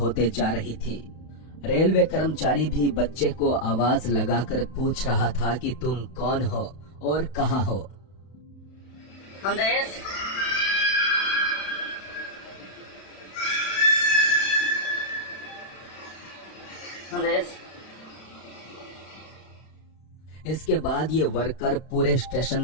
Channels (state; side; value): late; right; 31 ms